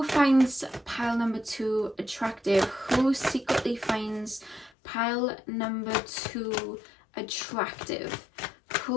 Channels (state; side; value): drops out; right; at 4.7 s